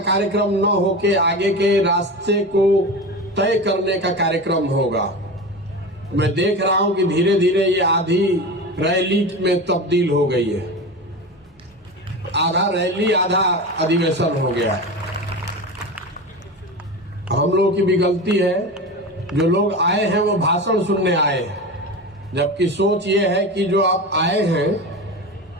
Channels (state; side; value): normal; both; correlation 0.26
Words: कार्यक्रम न होके आगे के रास्ते को तय करने का कार्यक्रम होगा। मैं देख रहा हूं कि धीरे धीरे ये आधी रैली में तब्दील हो गई है, आधा रैली आधा अधिवेशन हो गया है। हम लोगों की भी गलती है, जो लोग आए हैं वो भाषण सुनने आए हैं, जबकि सोच ये है कि जो आप आए हैं